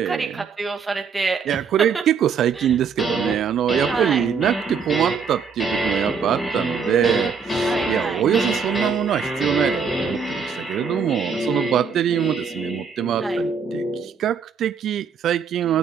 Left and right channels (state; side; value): quieter; left; 6.1 dB